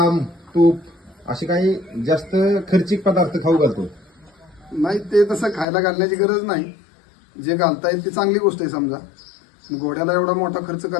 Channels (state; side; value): drops out; right; at 5.7 s